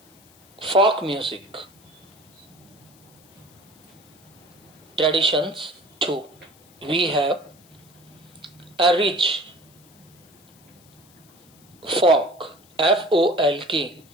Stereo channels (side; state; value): left; noise; hiss, 28 dB below the sound